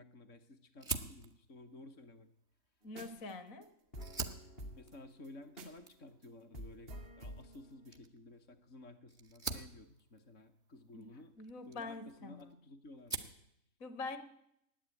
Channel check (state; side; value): late; right; 3.2 ms